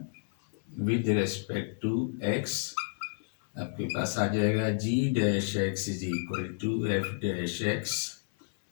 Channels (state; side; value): silent; right; 57 dB below the other